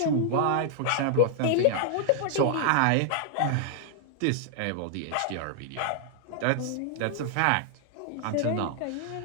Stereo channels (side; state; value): both; different; correlation -0.01